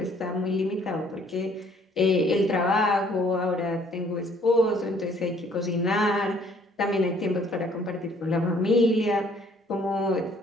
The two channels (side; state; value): both; normal; correlation 0.60